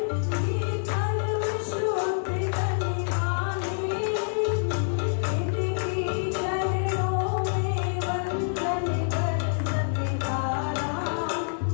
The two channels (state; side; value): silent; right; 60 dB below the other